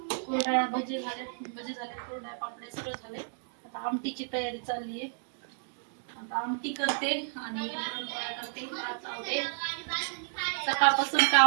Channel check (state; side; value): silent; left; digital silence